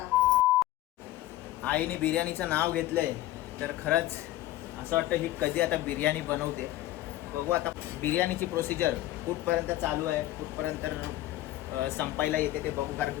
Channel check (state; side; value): quieter; right; 15.5 dB